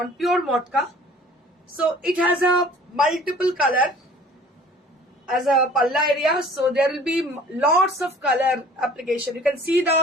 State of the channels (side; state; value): both; normal; correlation 0.50